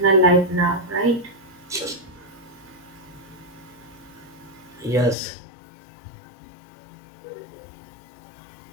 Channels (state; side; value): drops out; right; at 5.2 s